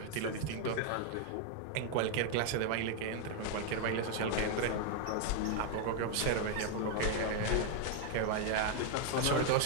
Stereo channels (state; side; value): different; both; correlation 0.00